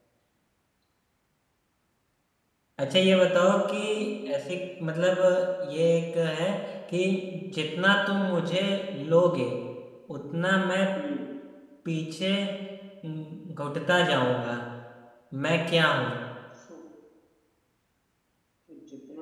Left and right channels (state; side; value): identical; both; correlation 1.00